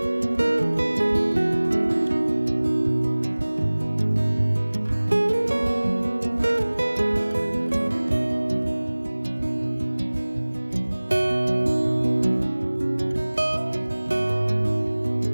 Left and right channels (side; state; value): both; inverted; correlation -1.00